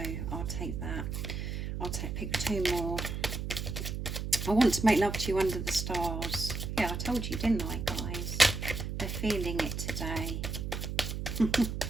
I'll take that. Pick two more. I want to make love to you under the stars. Yeah, I told you, didn't I, guys? They're feeling it today.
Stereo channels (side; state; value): right; noise; hum, 4 dB below the sound